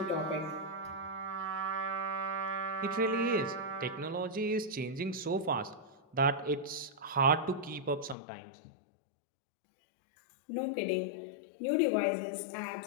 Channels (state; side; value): drops out; right; at 8.2 s